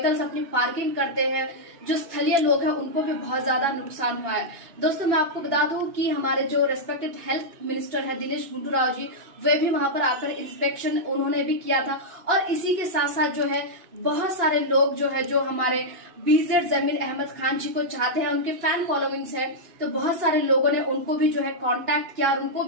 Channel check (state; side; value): late; left; 2.8 ms